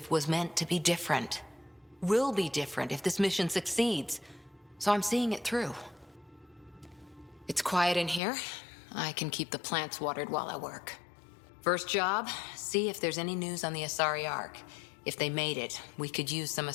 was meant to be different. Will be different if this mission succeeds. So I'm seeing it through. It's quiet in here. I can keep the plants watered while I work. First job, see if there's any news on the Asari Ark. If they made it, we could use some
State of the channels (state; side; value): drops out; right; at 8.2 s